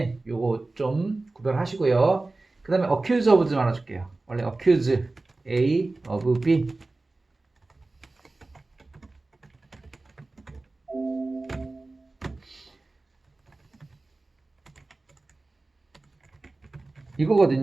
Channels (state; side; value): quieter; left; 3.2 dB